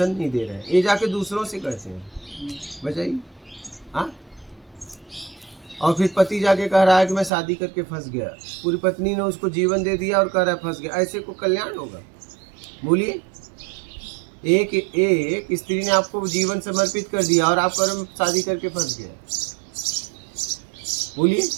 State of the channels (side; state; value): left; drops out; at 7.3 s